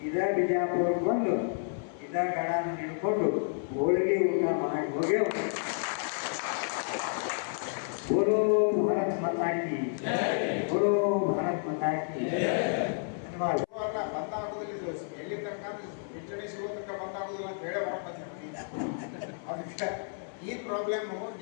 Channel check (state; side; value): silent; right; 57 dB below the other